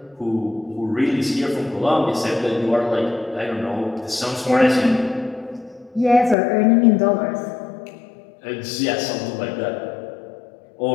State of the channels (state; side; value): drops out; right; at 6.4 s